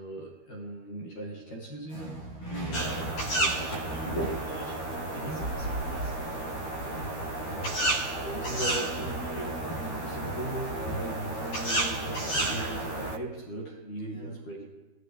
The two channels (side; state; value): right; late; 13 ms